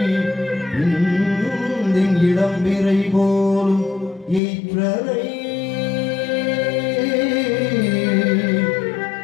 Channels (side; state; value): right; drops out; at 4.4 s